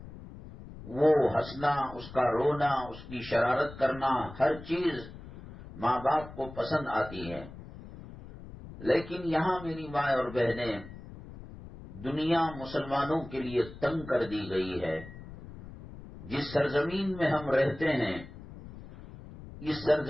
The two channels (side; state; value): left; noise; rumble, 15 dB below the sound